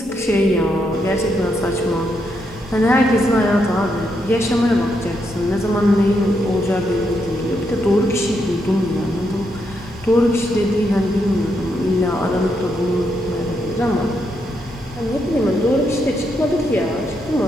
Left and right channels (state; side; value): normal; both; correlation 0.80